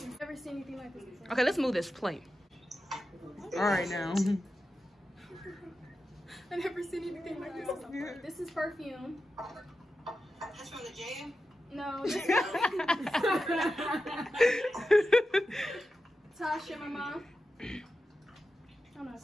You've never seen anything like this before. Okay, let's move this plate. All right now. I've never seen anything like this before. This is perfume. That's from the jam? No. This is Tasha, my mom. I'm gonna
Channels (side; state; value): both; normal; correlation 0.91